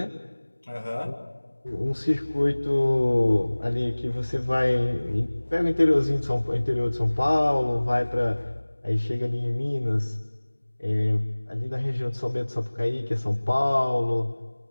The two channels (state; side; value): inverted; both; correlation -1.00